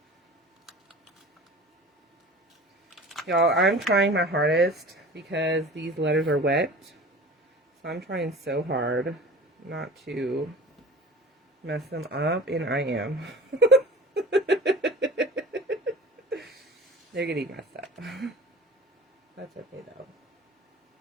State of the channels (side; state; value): both; normal; correlation 0.39